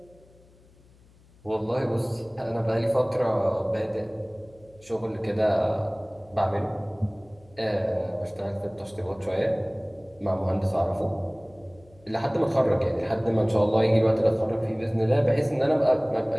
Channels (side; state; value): left; noise; hum, 28 dB below the sound